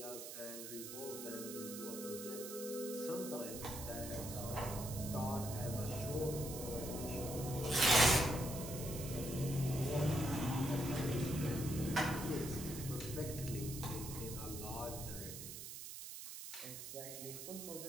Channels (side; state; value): right; noise; hiss, 9 dB below the sound